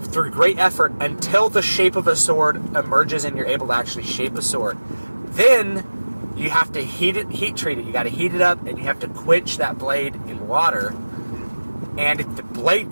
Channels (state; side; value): inverted; both; correlation -1.00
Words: great effort until the shape of a sword emerges and you're able to actually shape a sword. Then you have to heat treat it. You got to heat it up, and you have to quench that blade in water. And if the